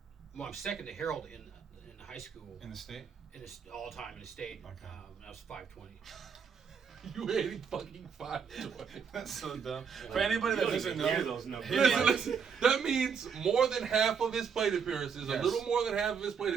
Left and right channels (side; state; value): left; quieter; 6.5 dB